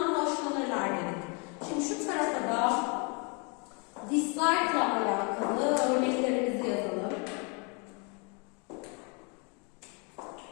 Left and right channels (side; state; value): right; quieter; 33.9 dB